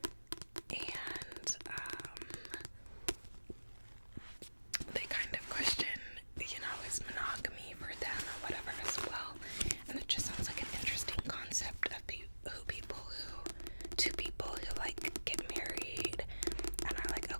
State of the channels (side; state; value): both; inverted; correlation -1.00